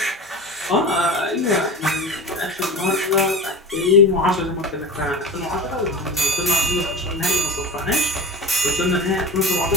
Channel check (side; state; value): both; normal; correlation 0.31